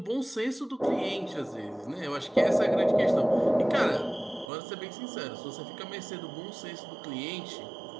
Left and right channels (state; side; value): drops out; left; at 4.5 s